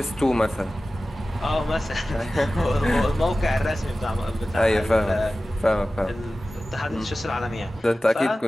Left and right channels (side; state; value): both; normal; correlation 0.96